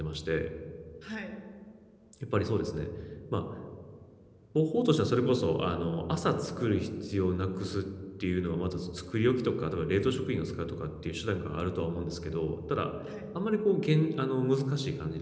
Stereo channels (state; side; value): identical; both; correlation 1.00